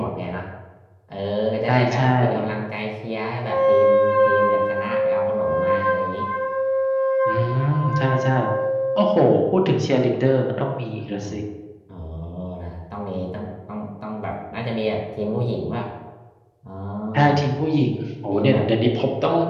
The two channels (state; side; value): identical; both; correlation 1.00